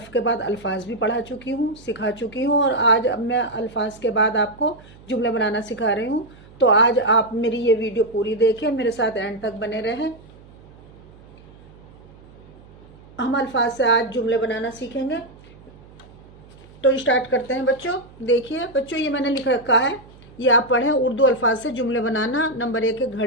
के बाद अल्फाज भी पढ़ा चुकी हूँ, सिखा चुकी हूँ। और आज अब मैं अल्फाज के बाद आपको जुमले बनाना सिखा रही हूँ। तो आज आप मेरी ये वीडियो पूरी देखें, मेरे साथ एंड तक बने रहें। हम अल्फाज से आज जुमले बनाना सीखेंगे। तो स्टार्ट करते हैं बच्चों। देखिए बच्चों, ये मैंने लिख रखा है, ये आप पढ़ें। उर्दू अल्फाज से जुमले बनाना। नंबर 1 है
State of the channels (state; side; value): noise; right; hum, 23 dB below the sound